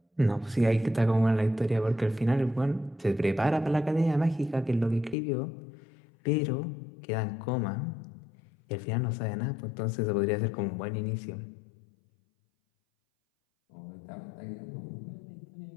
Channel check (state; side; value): drops out; right; at 5.2 s